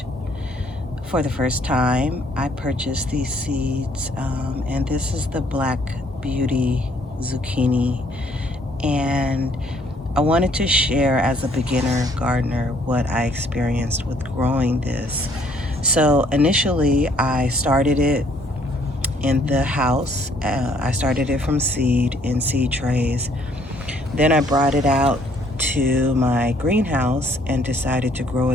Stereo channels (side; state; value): both; normal; correlation 0.64